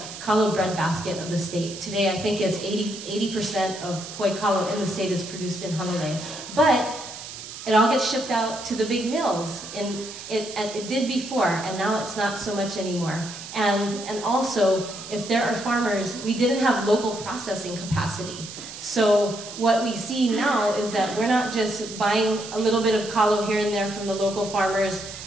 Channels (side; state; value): right; noise; hiss, 12 dB below the sound